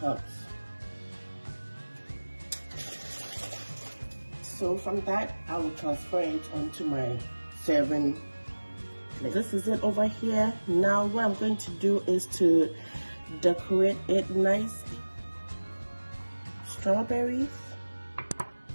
comes. So from that, I will transfer it onto my serving plate. This is it over here. Now what I'm going to do is to decorate it nicely. Strawberries,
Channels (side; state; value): both; inverted; correlation -1.00